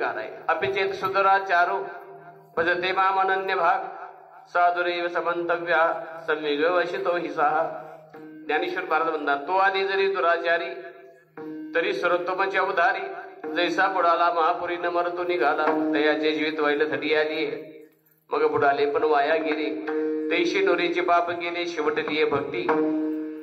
आहे. अपिचेत सुदराचारो भजते माम अनन्य भाग साधुरेव समंतव्या संविग वशितो हिसा. ज्ञानेश्वर महाराज म्हणतात, तो आधी जरी दुराचारी तरी सर्वोत्तमाची अवधारी. जैसा बुडाला महापुरी न मरतो निघाला, तयाचे जीवित व्हायला थडी आली. मग बुडाले पण वाया गेले, तैशी नोरीचे पाप गेले, शेवटलीये भक्ती.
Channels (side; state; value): both; identical; correlation 1.00